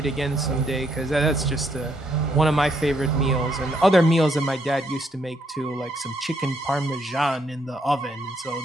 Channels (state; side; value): normal; both; correlation 0.73